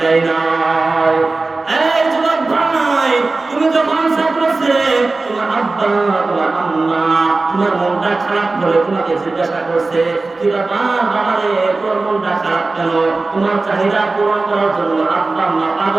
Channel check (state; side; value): quieter; left; 3.5 dB